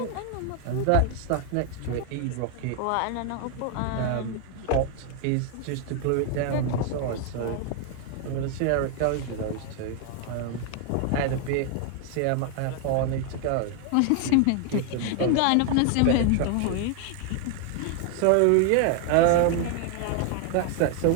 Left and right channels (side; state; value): both; different; correlation 0.00